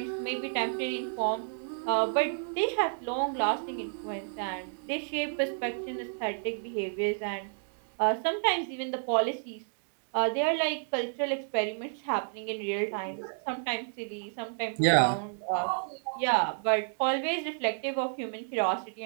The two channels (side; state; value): left; silent; digital silence